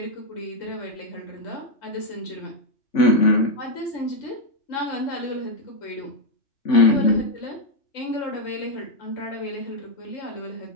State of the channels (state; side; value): late; right; 3.5 ms